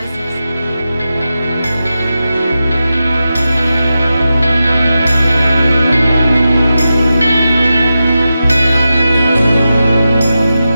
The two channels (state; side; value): inverted; both; correlation -0.91